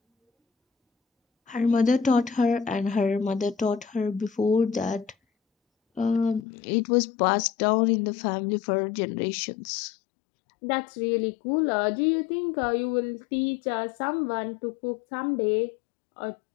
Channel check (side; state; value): right; drops out; at 6.5 s